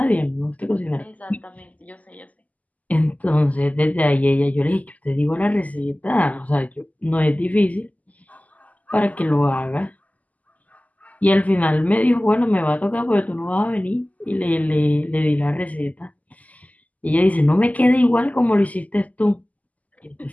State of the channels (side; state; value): right; late; 0.076 ms